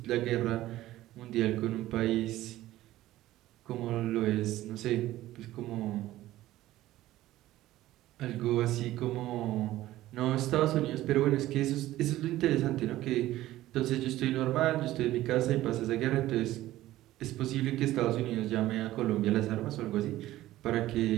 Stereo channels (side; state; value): left; quieter; 15.4 dB